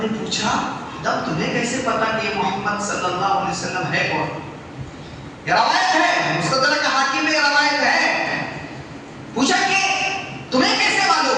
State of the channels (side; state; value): both; identical; correlation 1.00